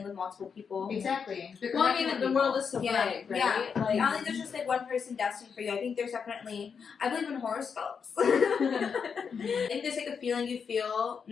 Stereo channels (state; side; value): quieter; right; 6.3 dB